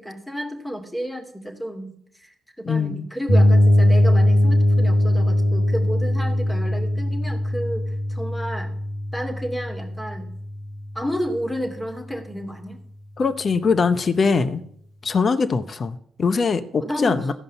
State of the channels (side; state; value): both; normal; correlation 0.93